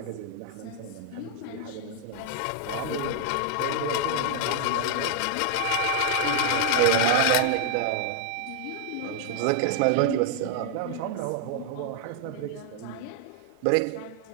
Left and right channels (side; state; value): both; different; correlation 0.00